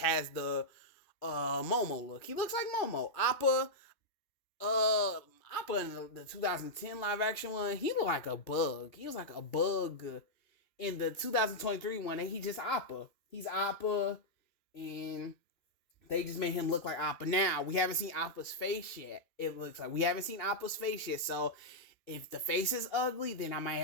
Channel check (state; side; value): late; right; 2.8 ms